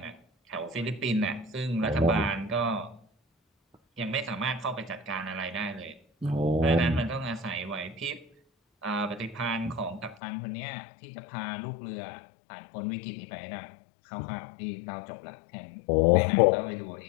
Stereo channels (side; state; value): right; drops out; at 10.2 s